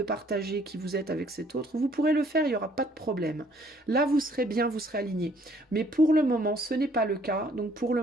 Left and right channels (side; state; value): both; normal; correlation 0.62